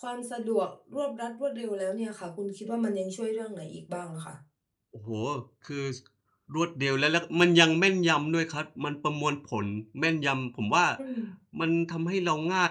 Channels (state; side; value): identical; both; correlation 1.00